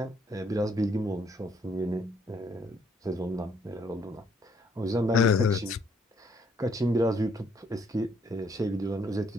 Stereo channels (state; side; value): normal; both; correlation 0.68